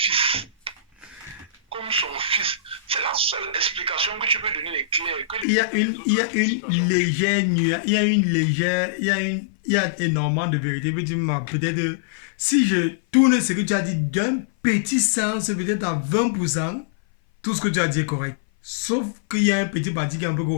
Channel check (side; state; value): right; drops out; at 5.5 s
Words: Comme son fils. C'est la seule explication que tu peux donner l'éclair. Il y a une légère nuance, il y a énormément de vérité. Peut-être, si je tourne ce que tu as dit d'un petit sens, peut-être à 20%, tout ce que tu as dit est correct. Sauf qu'il y a un petit parti qui est un peu